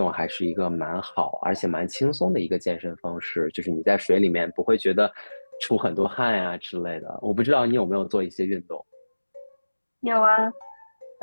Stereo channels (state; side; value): inverted; both; correlation -1.00